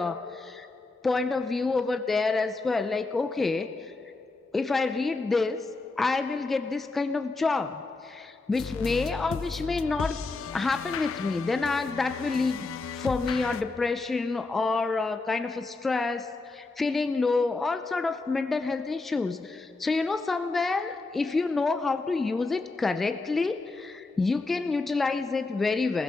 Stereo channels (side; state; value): right; quieter; 3.6 dB